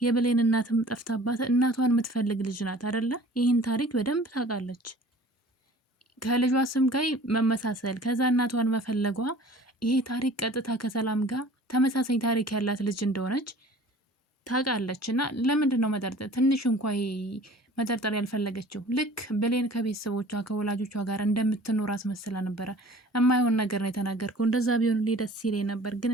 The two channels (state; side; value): normal; both; correlation 0.46